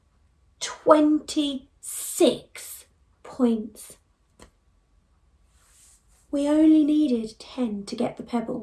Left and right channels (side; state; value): both; identical; correlation 1.00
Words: 26 points. We only needed 10 to get the